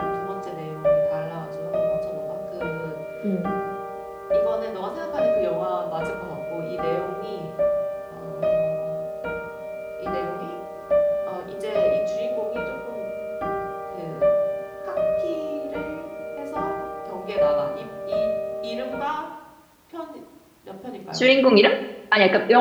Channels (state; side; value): identical; both; correlation 1.00